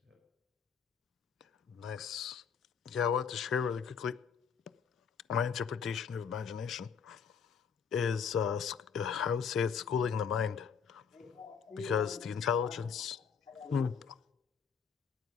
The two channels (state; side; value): quieter; right; 6.8 dB